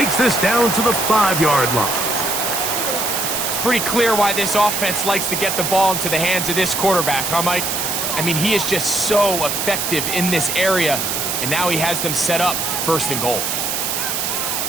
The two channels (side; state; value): right; noise; hiss, 1 dB below the sound